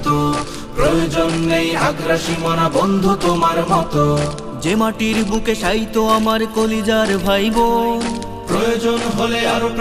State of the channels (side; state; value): both; identical; correlation 1.00